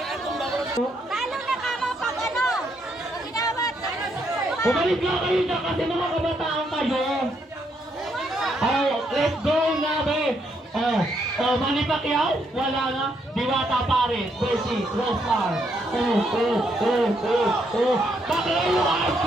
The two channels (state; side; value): normal; both; correlation 0.75